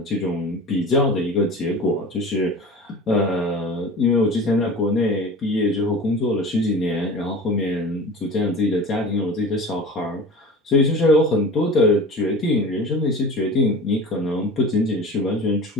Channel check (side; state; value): both; normal; correlation 0.37